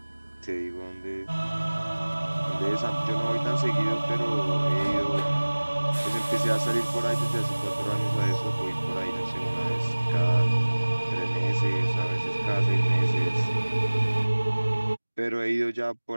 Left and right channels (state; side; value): inverted; both; correlation -1.00